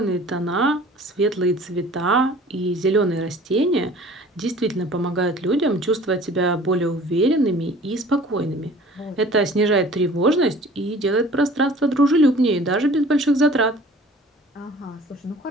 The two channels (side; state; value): both; normal; correlation 0.47